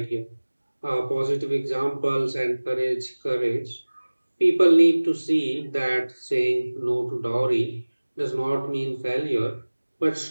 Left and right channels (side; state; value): both; inverted; correlation -1.00